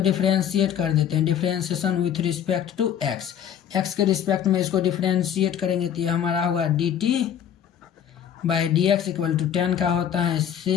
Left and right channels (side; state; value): right; quieter; 9.3 dB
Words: कर देते हैं, differentiation with respect to x, x के रिस्पेक्ट में इसको डिफ्रेंशिएट करेंगे तो ये हमारा होगा dt/dx = 10 का होता है